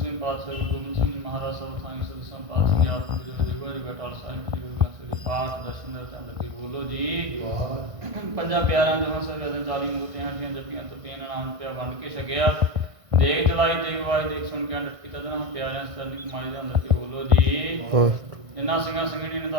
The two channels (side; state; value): left; late; 1.6 ms